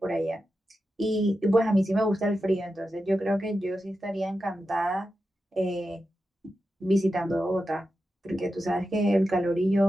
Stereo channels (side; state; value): both; normal; correlation 0.90